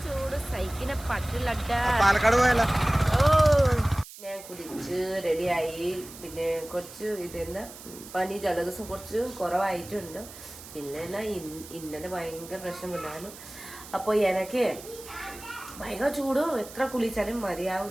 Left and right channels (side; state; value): right; noise; hiss, 16 dB below the sound